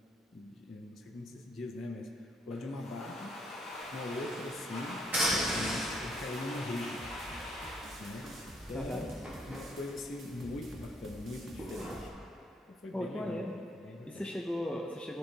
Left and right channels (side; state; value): both; normal; correlation 0.70